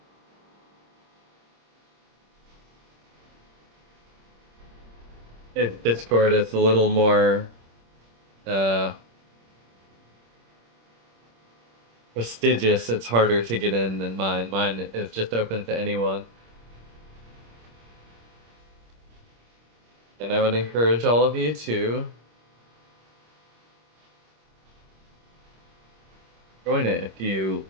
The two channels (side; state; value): left; late; 26 ms